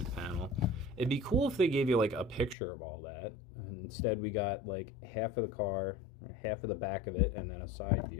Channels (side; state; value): right; drops out; at 2.6 s